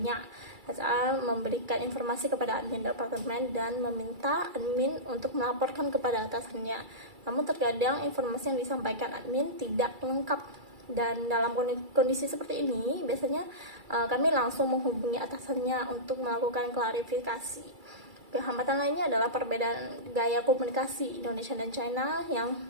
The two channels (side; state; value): left; late; 2.3 ms